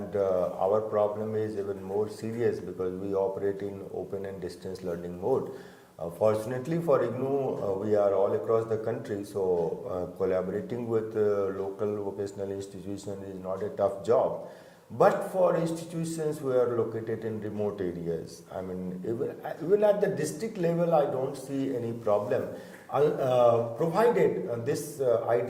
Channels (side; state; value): both; identical; correlation 1.00